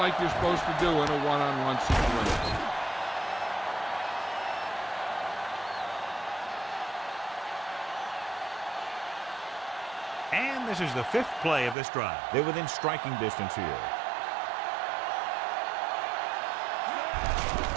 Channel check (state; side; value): drops out; left; at 11.8 s